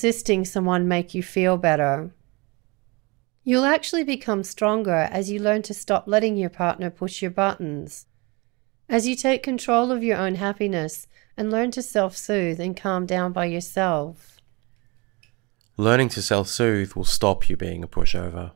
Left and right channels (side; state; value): left; quieter; 26.8 dB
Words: someone make you feel better. You'll actually become stronger as you learn to stop letting your partner push your buttons, as you take control of your own happiness and learn to self-soothe and calm down by yourself. Learning to self-soothe will stop you being a pushover.